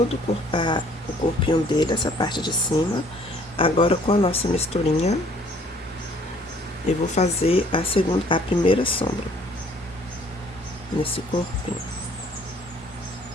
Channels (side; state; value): both; normal; correlation 0.59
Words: o corpinho dele, essa parte de cima. Agora, com a nossa misturinha, eu vou fazer a primeira sombra nesse corpinho.